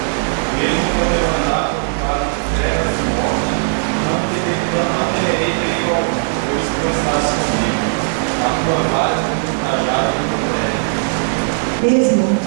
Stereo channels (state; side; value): silent; left; digital silence